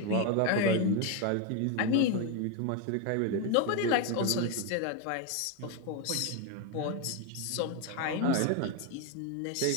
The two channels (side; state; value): both; different; correlation 0.02